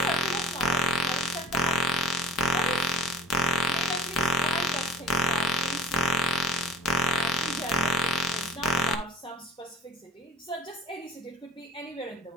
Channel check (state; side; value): normal; both; correlation 0.37